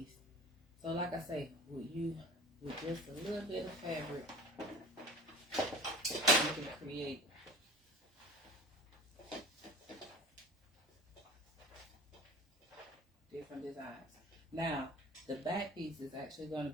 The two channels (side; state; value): both; normal; correlation 0.39